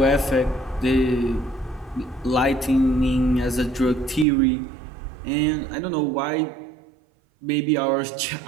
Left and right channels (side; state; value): left; drops out; at 4.2 s